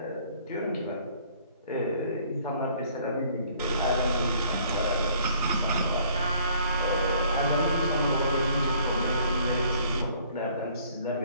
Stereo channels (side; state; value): both; inverted; correlation -0.59